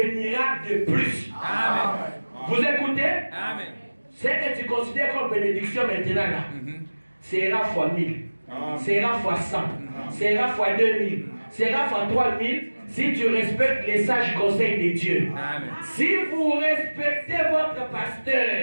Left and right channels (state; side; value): inverted; both; correlation -1.00